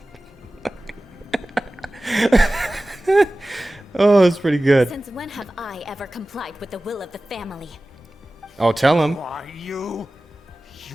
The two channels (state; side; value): normal; both; correlation 0.97